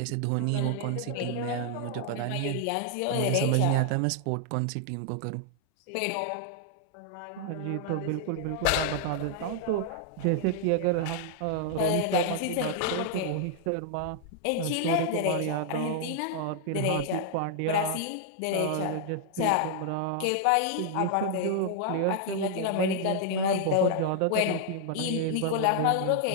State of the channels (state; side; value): different; both; correlation 0.00